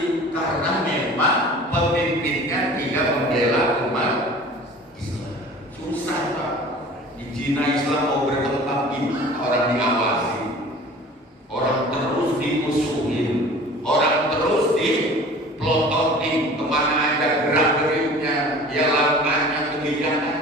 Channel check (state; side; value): normal; both; correlation 0.43